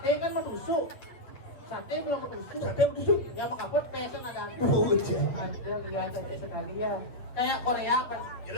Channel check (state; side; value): late; right; 8.1 ms